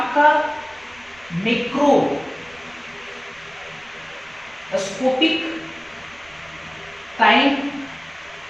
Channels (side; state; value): right; noise; rumble, 28 dB below the sound